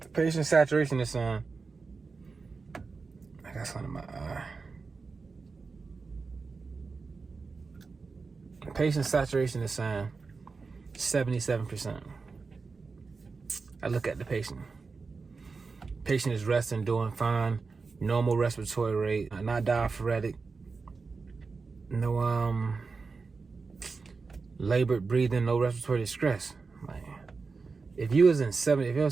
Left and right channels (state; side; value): quieter; left; 4.5 dB